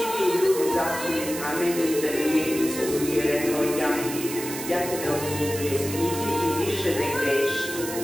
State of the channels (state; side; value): noise; right; hiss, 8 dB below the sound